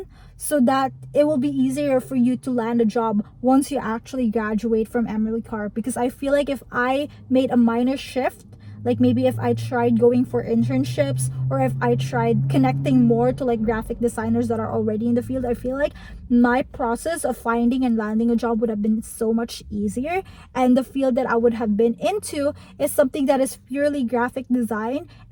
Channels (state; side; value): identical; both; correlation 1.00